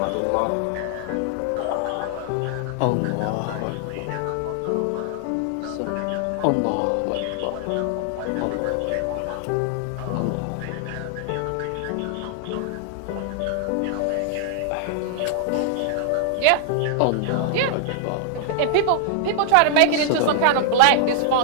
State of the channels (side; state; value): both; different; correlation -0.01